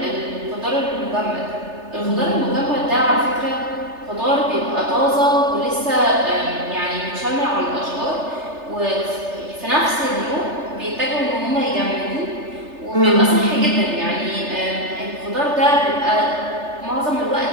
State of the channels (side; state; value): left; late; 3.3 ms